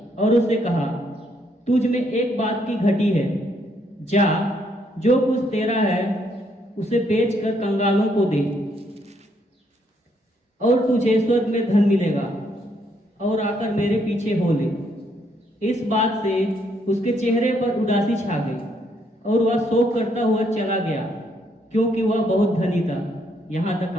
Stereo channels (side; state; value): both; normal; correlation 0.72